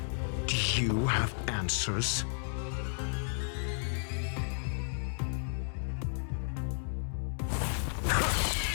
Do you have answers?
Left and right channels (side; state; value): right; silent; digital silence